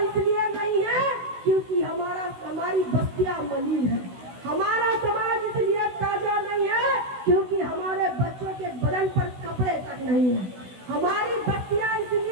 नहीं है क्योंकि हमारी बस्तियां मलिन है। हमारा समाज इसलिए ताजा नहीं है क्योंकि हमारे बच्चों के बदन पर कपड़े तक नहीं है। हमारी बस्तियां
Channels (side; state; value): left; late; 16 ms